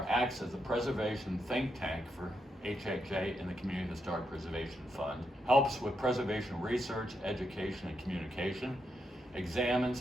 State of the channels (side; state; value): both; normal; correlation 0.82